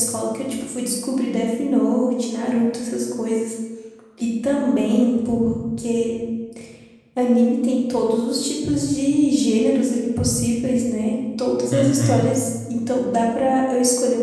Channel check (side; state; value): both; identical; correlation 1.00